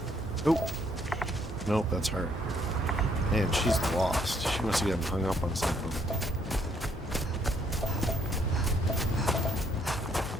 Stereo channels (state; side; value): normal; both; correlation 0.68